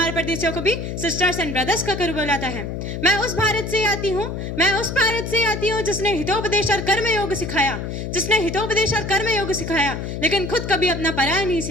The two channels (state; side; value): noise; left; hum, 5 dB below the sound